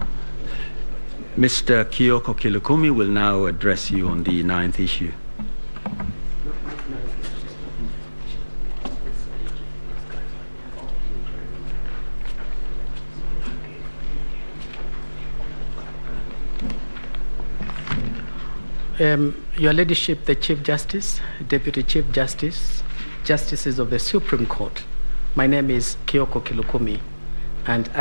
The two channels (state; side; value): inverted; both; correlation -1.00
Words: Mr. Kioko Kilukumi will now address you on the 9th issue. Your Ladyship, the Chief Justice, Deputy Chief Justice, Justices of the Supreme Court, my name is Kioko Kilukumi, and